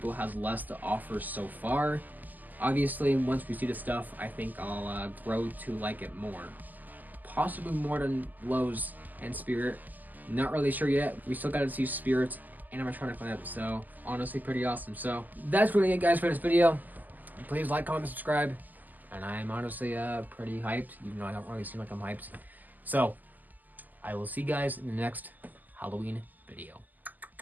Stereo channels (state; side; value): late; left; 0.083 ms